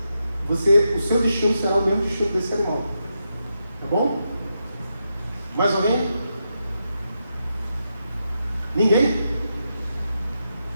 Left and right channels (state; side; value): inverted; both; correlation -0.85